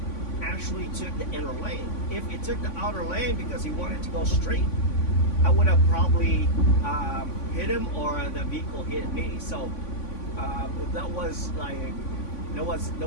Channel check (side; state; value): right; late; 3.5 ms